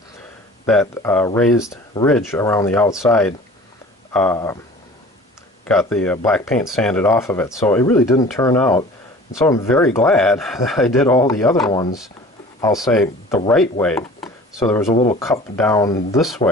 that raised ridge around the outside got the black paint sanded off of it. So it really didn't turn out. And so I'm very glad that I did all the other ones, I'll say, the right way. So there was a little cup down this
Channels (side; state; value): both; normal; correlation 0.44